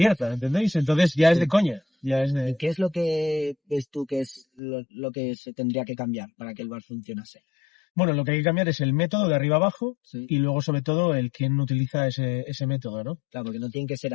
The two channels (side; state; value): right; drops out; at 4.6 s